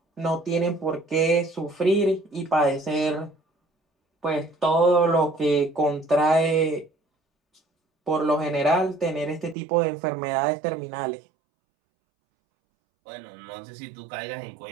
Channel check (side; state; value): left; drops out; at 9.6 s